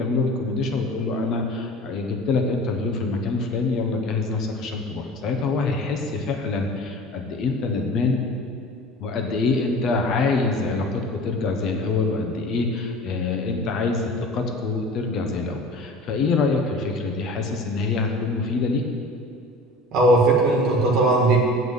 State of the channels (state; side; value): normal; both; correlation 0.39